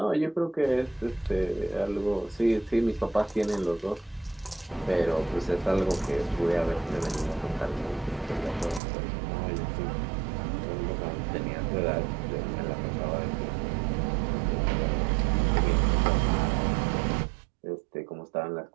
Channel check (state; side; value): drops out; left; at 8.8 s